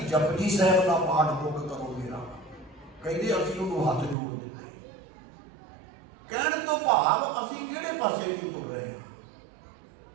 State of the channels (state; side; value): drops out; left; at 4.2 s